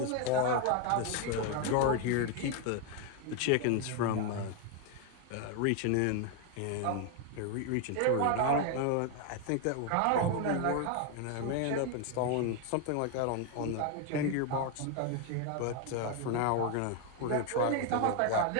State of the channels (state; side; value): different; both; correlation 0.01